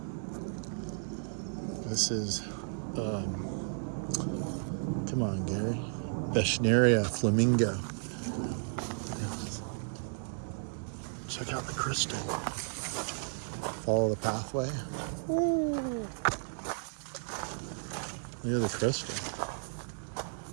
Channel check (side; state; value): left; silent; 55 dB below the other